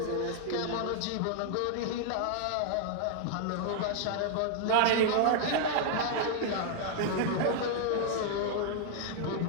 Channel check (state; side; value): different; both; correlation -0.01